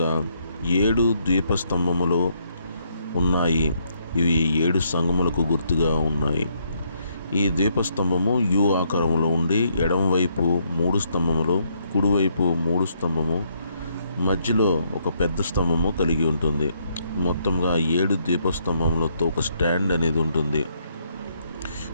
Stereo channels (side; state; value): both; inverted; correlation -0.73